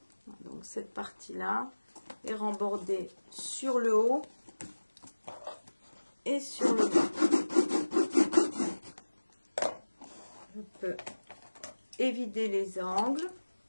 Donc cette partie-là est rembordée sur le haut et sur le bas. Je peux évider les angles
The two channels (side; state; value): both; inverted; correlation -1.00